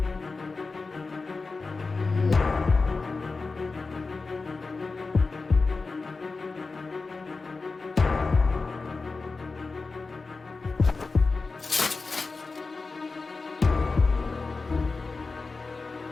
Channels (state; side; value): quieter; right; 4.0 dB